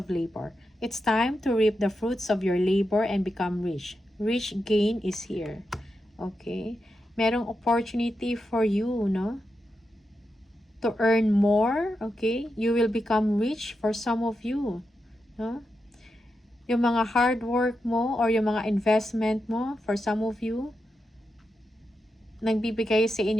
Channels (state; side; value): normal; both; correlation 0.87